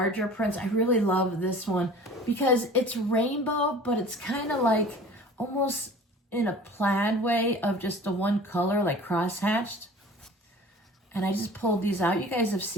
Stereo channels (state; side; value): normal; both; correlation 0.43